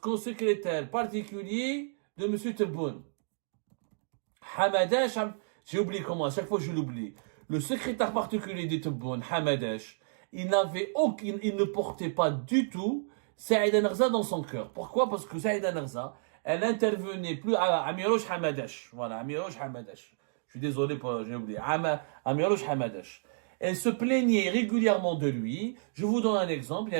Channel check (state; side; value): silent; left; digital silence